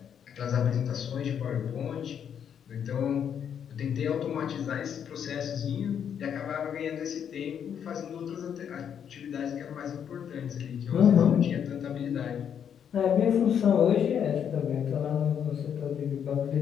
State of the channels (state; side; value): quieter; right; 8.4 dB